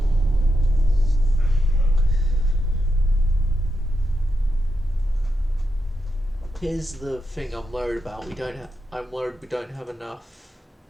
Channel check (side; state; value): both; normal; correlation 0.86